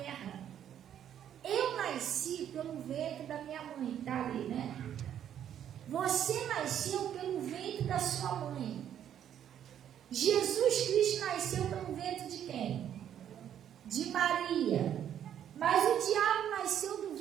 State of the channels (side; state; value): left; quieter; 9.9 dB